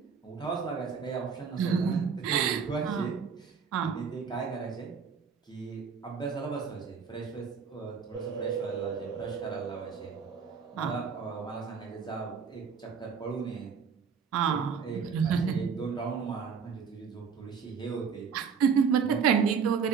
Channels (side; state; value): left; quieter; 6.2 dB